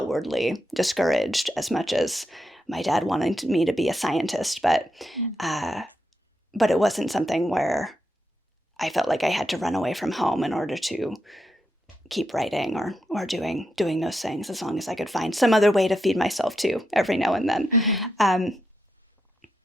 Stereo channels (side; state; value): both; normal; correlation 0.84